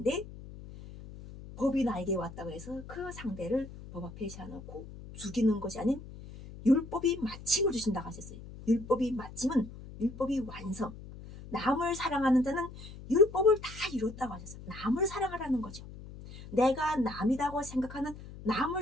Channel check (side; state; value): left; noise; hum, 14 dB below the sound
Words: 법이 나에게 왔다고 해서 그 상대를 법 앞에 세워놓고 죽이는 것이 아닌 율법이 마침을 주신다고 하셨어요. 율법이 마침은 율법이 완성. 남을 사랑하는 자는 율법을 다 이뤘다고 하셨어요. 남을 사랑하라는 거죠. 내가 남이라고 생각하는 남을